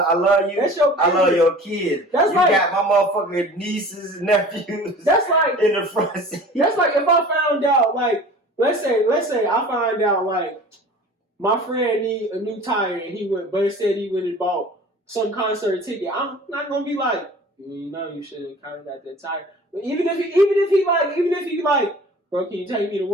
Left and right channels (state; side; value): normal; both; correlation 0.43